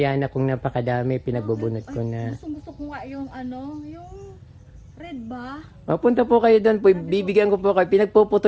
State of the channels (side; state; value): both; identical; correlation 1.00